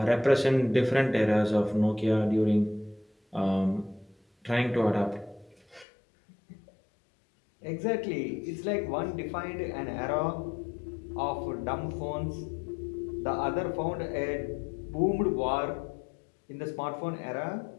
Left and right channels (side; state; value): right; drops out; at 5.9 s